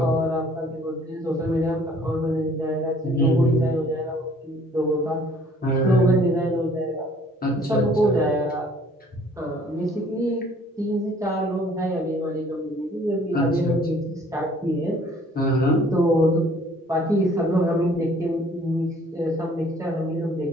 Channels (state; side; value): normal; both; correlation 0.57